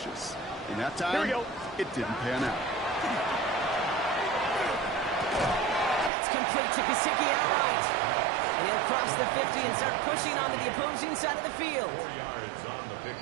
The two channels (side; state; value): left; drops out; at 6.1 s